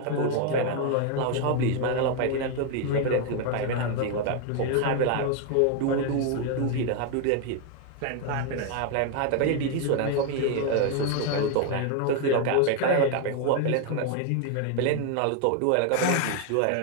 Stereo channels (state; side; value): different; both; correlation 0.01